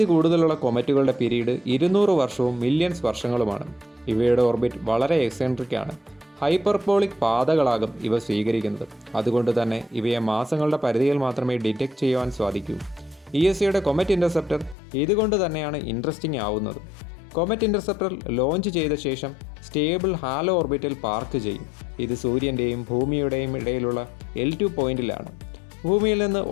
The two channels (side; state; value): right; drops out; at 14.8 s